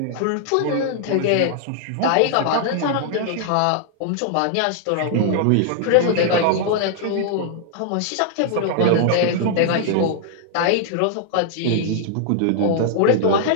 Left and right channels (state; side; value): different; both; correlation 0.00